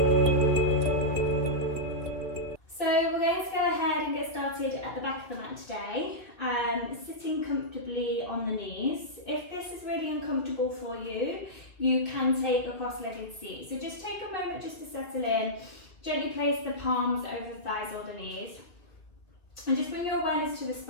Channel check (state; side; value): late; right; 2.9 ms